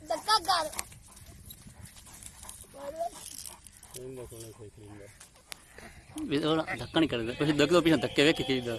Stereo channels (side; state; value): both; identical; correlation 1.00